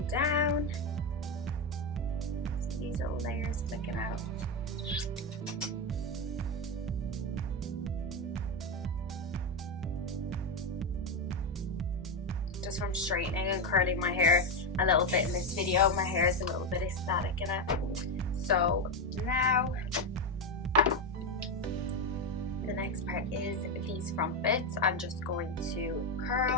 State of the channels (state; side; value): normal; both; correlation 0.09